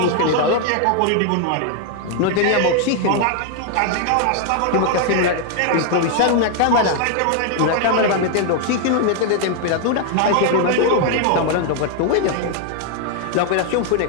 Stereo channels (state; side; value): different; both; correlation 0.00